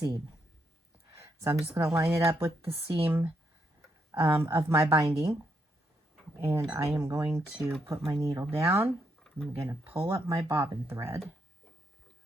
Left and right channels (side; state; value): both; normal; correlation 0.78